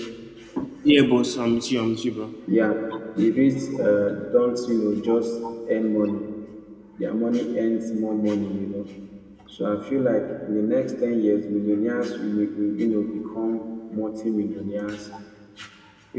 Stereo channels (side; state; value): both; identical; correlation 1.00